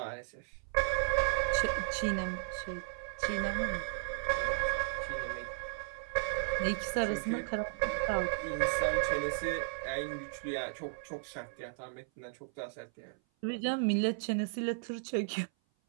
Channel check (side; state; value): left; silent; 55 dB below the other